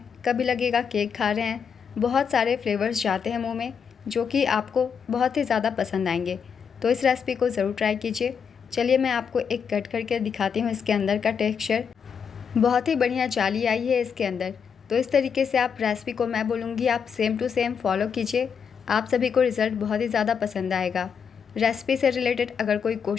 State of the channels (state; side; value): quieter; right; 6.8 dB